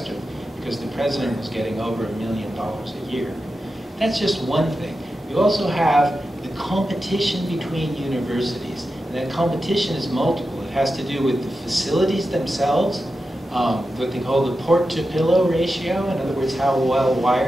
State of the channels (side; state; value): both; normal; correlation 0.91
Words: because the president was getting over $1 million a year. That's just one thing. You also have the competition between universities. And that competition is multiple. It has to do with the facilities themselves, what they call the port-to-pillow ratio. In other words, how well